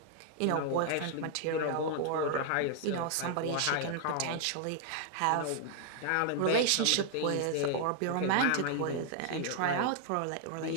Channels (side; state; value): both; different; correlation 0.00